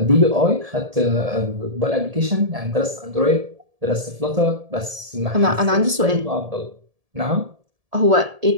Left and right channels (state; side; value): late; left; 1.7 ms